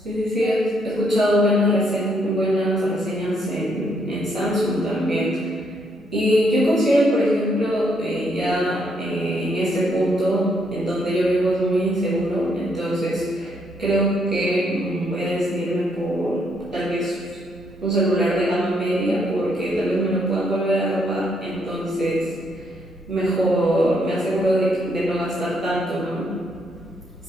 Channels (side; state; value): both; normal; correlation 0.73